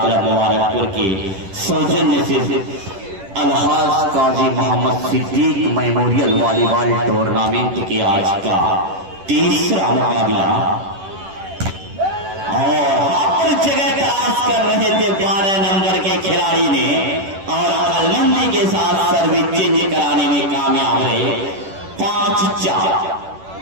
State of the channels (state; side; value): late; left; 10 ms